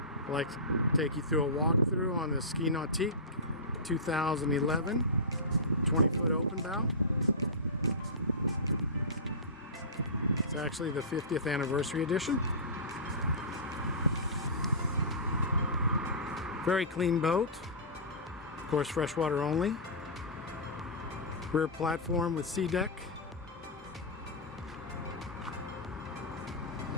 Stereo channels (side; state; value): both; normal; correlation -0.20